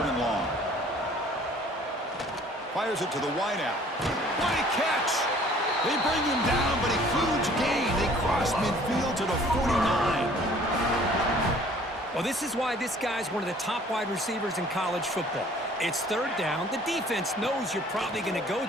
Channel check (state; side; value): normal; both; correlation 0.54